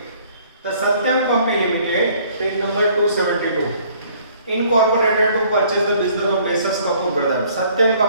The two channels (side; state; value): both; inverted; correlation -0.59